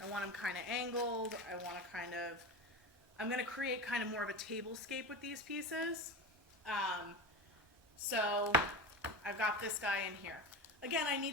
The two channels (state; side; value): normal; both; correlation 0.26